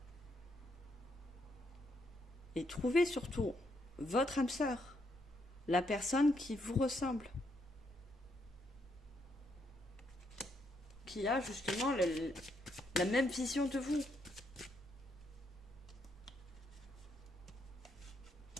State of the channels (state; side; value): normal; both; correlation 0.76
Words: et trouver surtout votre âme sœur, la personne qui vous ressemble. qui a justement la même vision de vous.